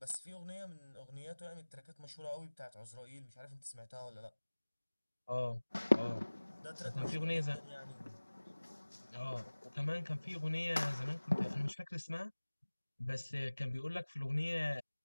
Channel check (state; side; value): inverted; both; correlation -1.00